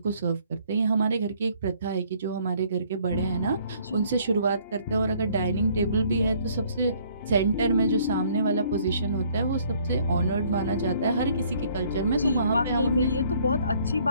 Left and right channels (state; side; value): inverted; both; correlation -0.61